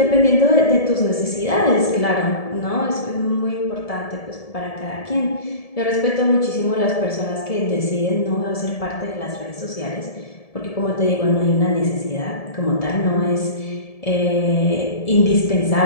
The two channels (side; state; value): right; late; 1.7 ms